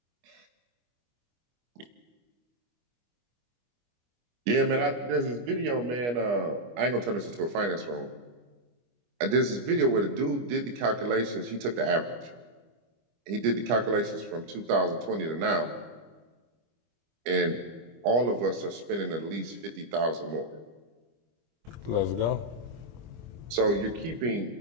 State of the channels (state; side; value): late; left; 25 ms